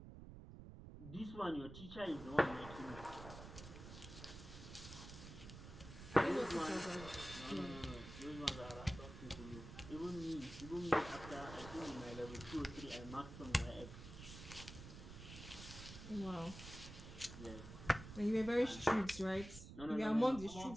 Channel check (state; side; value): noise; right; rumble, 12 dB below the sound